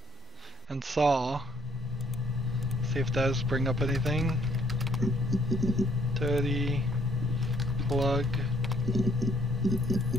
And saw. See if those bring up anything. Dirty. Plug.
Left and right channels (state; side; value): normal; both; correlation 0.65